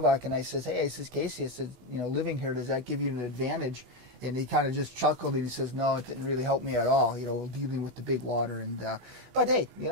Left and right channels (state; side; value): late; left; 16 ms